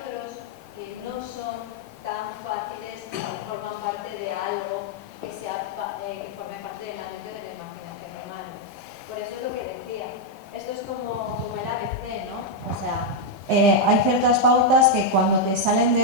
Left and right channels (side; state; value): both; normal; correlation -0.01